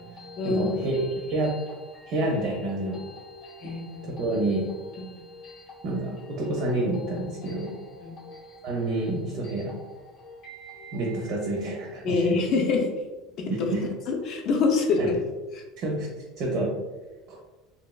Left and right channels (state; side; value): normal; both; correlation 0.35